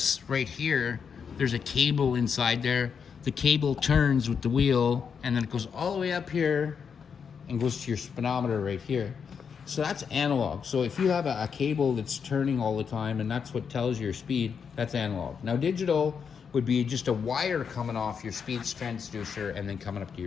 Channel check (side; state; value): right; quieter; 6.6 dB